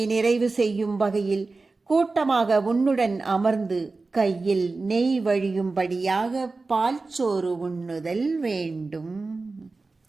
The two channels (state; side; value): quieter; left; 3.7 dB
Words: நிறைவு செய்யும் வகையில் கூட்டமாக உன்னுடன் அமர்ந்து கையில் நெய் வழியும்படியாக பால்சோறு உண்ணுதல் வேண்டும்.